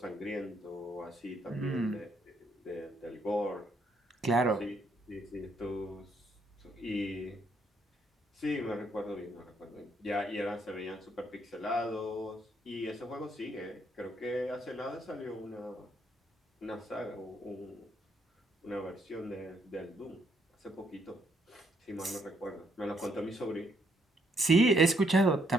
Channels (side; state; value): both; normal; correlation 0.72